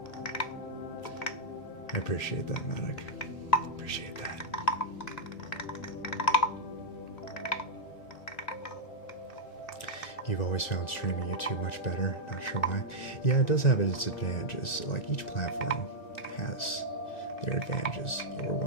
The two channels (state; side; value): late; right; 1.9 ms